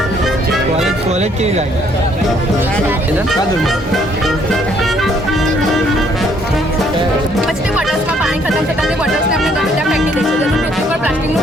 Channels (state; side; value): normal; both; correlation 0.65